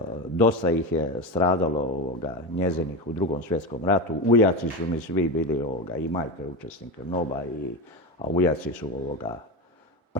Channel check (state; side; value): normal; both; correlation 0.19